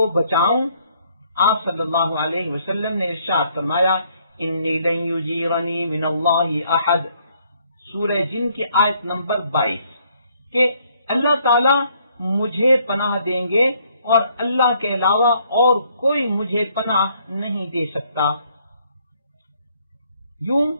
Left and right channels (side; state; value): both; inverted; correlation -0.67